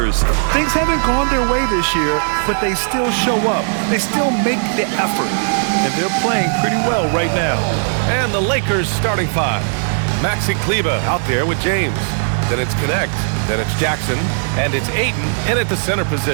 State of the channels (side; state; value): left; silent; 68 dB below the other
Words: Things haven't gone their way this year, but they still show up. They still make the effort, and they're playing pretty well right now. And the Lakers starting 5. Maxi Kleber out there with James. Then it's Connect. Then it's Jackson. And it's Ayton in at the center